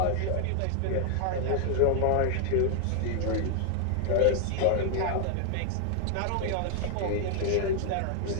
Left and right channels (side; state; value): both; different; correlation 0.00